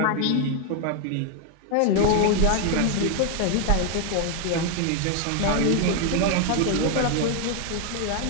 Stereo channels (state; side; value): different; both; correlation 0.00